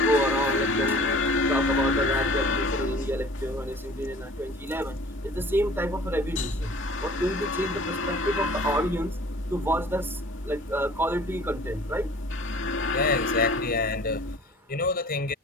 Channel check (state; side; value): normal; both; correlation 0.48